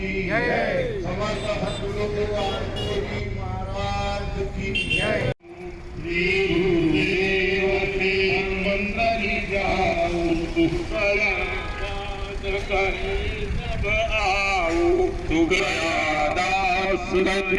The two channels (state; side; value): identical; both; correlation 1.00